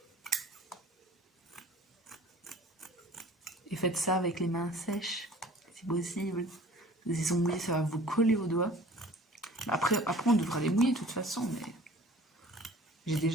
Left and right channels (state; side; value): normal; both; correlation 0.47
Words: Et faites ça avec les mains sèches, si possible. Les ongles, ça va vous coller aux doigts. Après on devra les mouiller de toute façon, mais j'ai